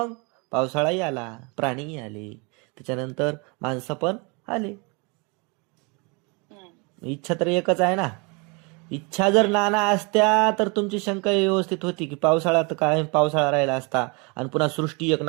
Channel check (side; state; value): left; quieter; 30.8 dB